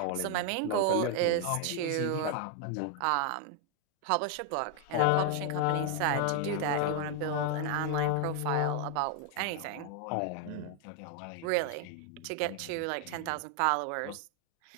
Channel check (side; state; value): both; different; correlation 0.00